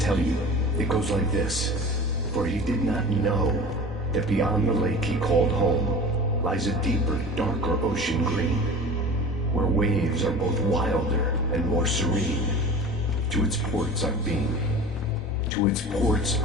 you. It goes like this. For he did not know that beyond the lake he called home lies a deeper, darker ocean green, where waves are both wilder and more serene. To its ports I've been. To its ports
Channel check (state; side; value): normal; both; correlation 0.37